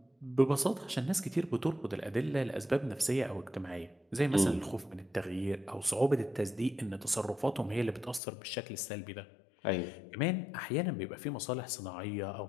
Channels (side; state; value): right; drops out; at 8.2 s